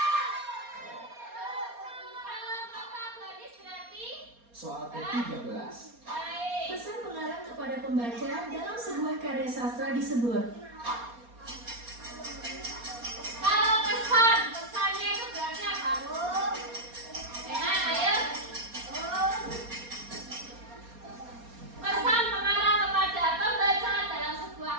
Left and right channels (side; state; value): left; late; 4.2 ms